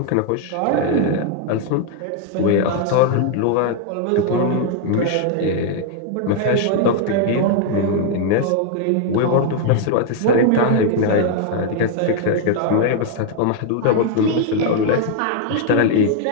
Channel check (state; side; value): different; both; correlation 0.00